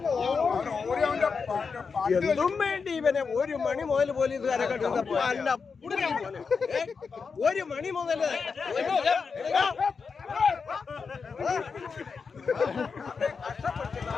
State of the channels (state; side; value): quieter; right; 5.3 dB